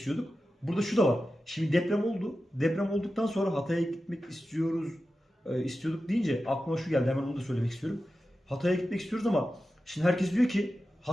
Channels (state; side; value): normal; both; correlation 0.93